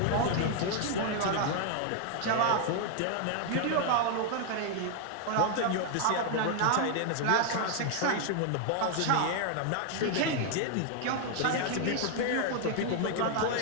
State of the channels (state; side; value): different; both; correlation 0.00